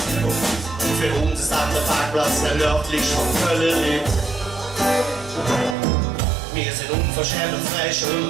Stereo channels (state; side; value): drops out; left; at 5.8 s